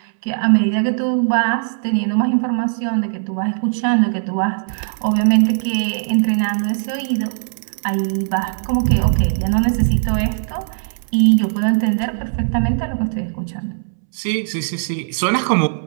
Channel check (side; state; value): left; silent; 66 dB below the other